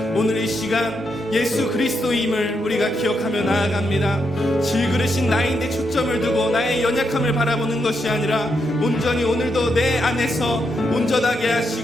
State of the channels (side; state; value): both; normal; correlation 0.81